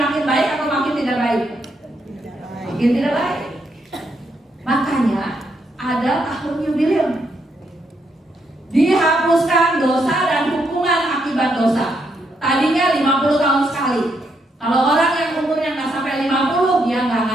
baik atau makin tidak baik? Makin tidak baik. Makanya ada tahun yubileum. Dihapuskan dosa dan hukuman akibat dosa. Tadinya 50 tahun sekali. Kalau orang yang umurnya nggak sampai 50, dia nggak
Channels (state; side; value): normal; both; correlation 0.78